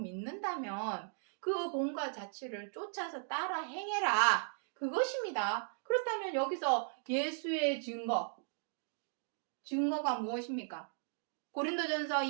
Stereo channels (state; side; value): silent; left; digital silence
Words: 그 본과 자치를 쫓아서 따라 행해라. 그것입니다. 그렇다면 여기서 예수의 증거가 무엇입니까? 고린도전서